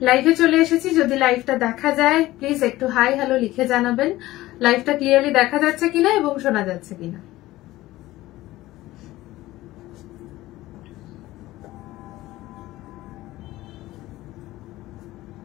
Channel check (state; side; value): quieter; right; 17.0 dB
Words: লাইভে চলে এসেছি, যদি লাইভটা দেখা যায় প্লিজ একটু হাই হ্যালো লিখে জানাবেন লাইভটা ক্লিয়ারলি দেখা যাচ্ছে কিনা এবং শোনা যাচ্ছে কিনা।